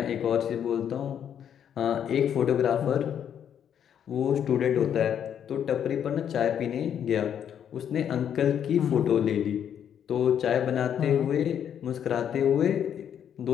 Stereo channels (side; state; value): right; quieter; 9.0 dB